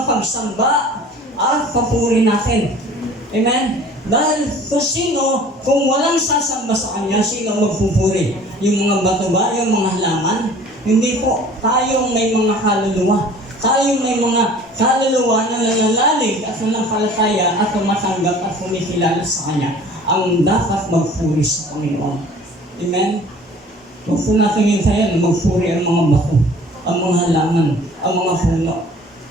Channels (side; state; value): both; normal; correlation 0.48